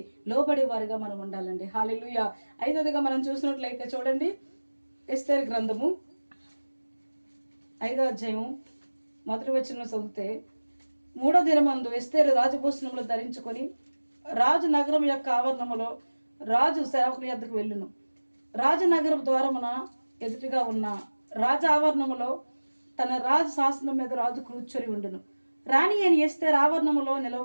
లోబడేవారుగా మనం ఉండాలండి. హల్లెలూయా. ఐదవదిగా మనం చూసినట్లయితే చూడండి, ఎస్తేరు గ్రంథము 5వ అధ్యాయం 1వ వచనం చదివితే, 3వ దినమందు ఎస్తేరు రాజభూషణములు ధరించుకొని రాజు నగరం యొక్క ఆవరణములో రాజు సేవకుని యొద్దకు వెళ్ళును. రాజనగరం ద్వారమున ఎదుటిగా ఉన్న రాజ ఆవరణములో తన రాజు శాసనం మీద రాజు కూర్చొని ఉండును. రాణి అని ఎస్తేరు ఆవరణములో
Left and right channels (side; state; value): both; inverted; correlation -1.00